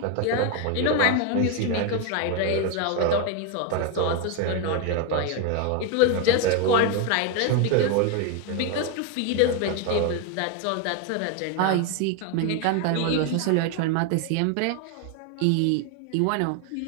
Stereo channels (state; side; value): different; both; correlation 0.01